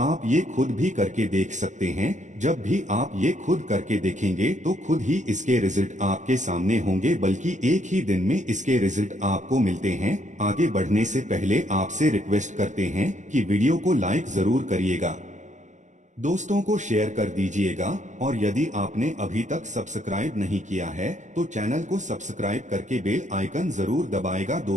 ये खुद भी करके देख सकते हैं। जब भी आप ये खुद करके देखेंगे तो खुद ही इसके रिजल्ट आपके सामने होंगे, बल्कि एक ही दिन में इसके रिजल्ट आपको मिलते हैं। आगे बढ़ने से पहले आपसे रिक्वेस्ट करते हैं कि वीडियो को लाइक जरूर करिएगा, दोस्तों को शेयर कर दीजिएगा और यदि आपने अभी तक सब्सक्राइब नहीं किया है तो चैनल को सब्सक्राइब करके बेल आइकन जरूर दबाएगा।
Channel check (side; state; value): left; late; 0.35 ms